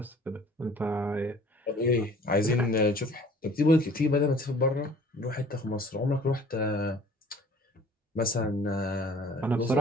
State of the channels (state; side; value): normal; both; correlation 0.51